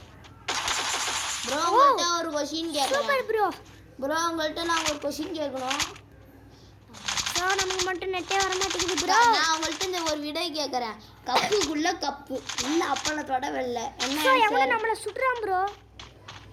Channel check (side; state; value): both; identical; correlation 1.00